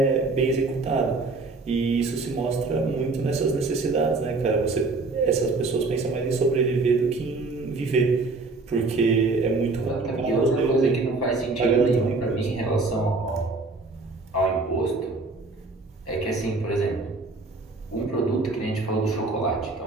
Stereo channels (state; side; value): quieter; left; 3.6 dB